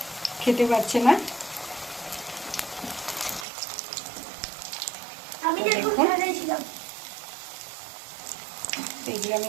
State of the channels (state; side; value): drops out; left; at 3.5 s